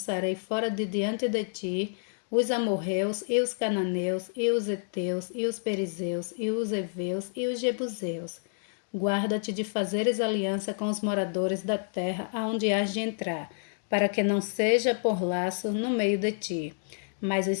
fora de diante de ti os amorreus e os cananeus e os heteus e os perizeus e os heveus e os jebuseus. Guarda-te de fazeres aliança com os moradores da terra aonde hás de entrar, para que não seja por laço no meio de ti. Mas os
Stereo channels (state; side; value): silent; right; digital silence